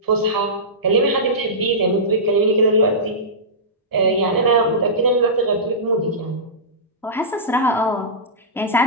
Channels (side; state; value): both; normal; correlation -0.18